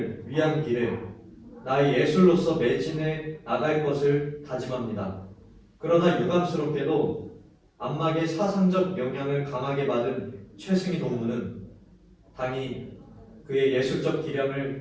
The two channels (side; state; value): both; identical; correlation 1.00